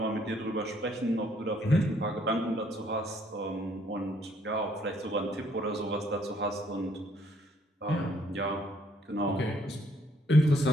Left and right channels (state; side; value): normal; both; correlation 0.66